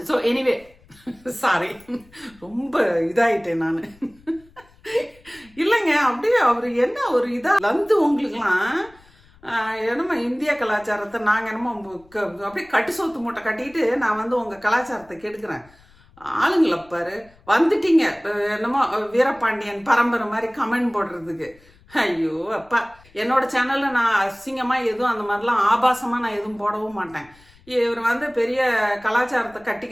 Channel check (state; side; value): noise; left; rumble, 28 dB below the sound